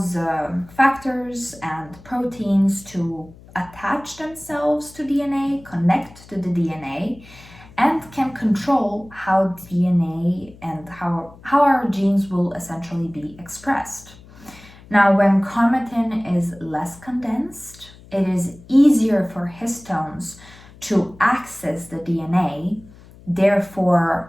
factors and proteins to attach themselves to DNA, connect to the DNA, and can control how DNA and how our genes will essentially be expressed. Now, when chromatin is less condensed, it is easier for histones to access the DNA.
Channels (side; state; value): left; noise; hum, 22 dB below the sound